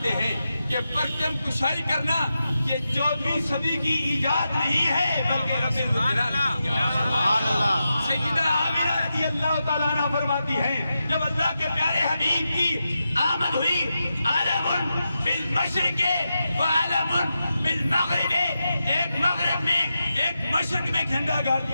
हैं कि परचम कुशाई करना ये 14वीं सदी की ईजाद नहीं है, बल्कि रब्बुल जलाल की सैयदा आमिना रज़ी अल्लाह ताला अन्हा फरमाती हैं, जब अल्लाह के प्यारे हबीब की आमद हुई, आलमुन बिल मशरिक़े व आलमुन बिल मग़रिबे, एक मग़रिब में एक मशरिक़ में झंडा गाड़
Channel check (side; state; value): both; inverted; correlation -0.89